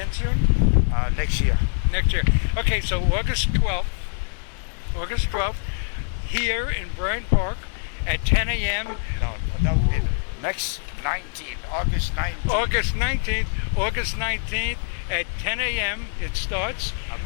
soon? Next year. Next year. Okay, so August 12th, here in Bryant Park at 10 a.m. No, that would be next 19th, August 19th. August 19th at 10 a.m. It starts. At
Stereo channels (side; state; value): right; silent; digital silence